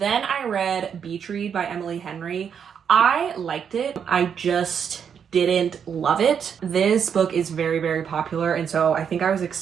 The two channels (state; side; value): quieter; left; 7.5 dB